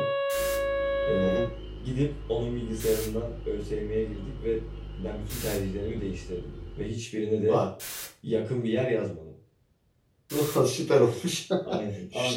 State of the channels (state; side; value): identical; both; correlation 1.00